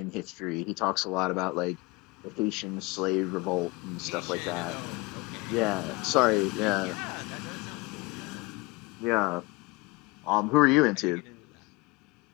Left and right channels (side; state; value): right; quieter; 24.4 dB